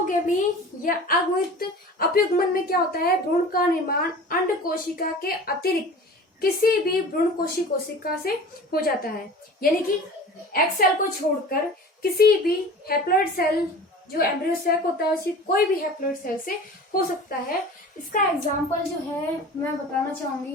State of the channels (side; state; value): both; normal; correlation 0.39